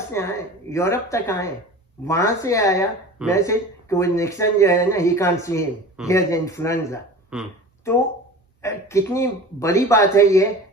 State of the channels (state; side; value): normal; both; correlation 0.38